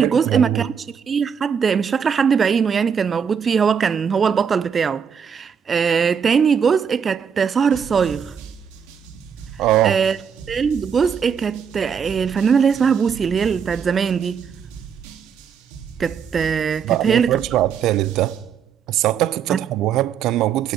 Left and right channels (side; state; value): left; quieter; 7.2 dB